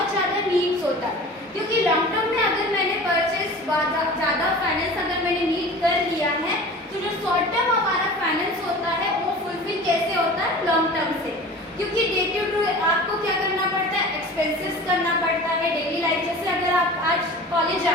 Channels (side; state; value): both; normal; correlation 0.39